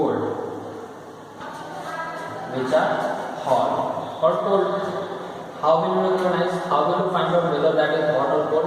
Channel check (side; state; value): both; identical; correlation 1.00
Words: How will you recognize? How will you find out whether that is hot or